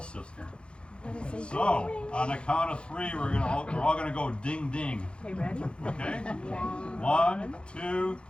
So, on the count of 3, we're all gonna go ding ding. Okay, ready? Okay? 1, 2,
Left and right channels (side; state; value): right; late; 0.055 ms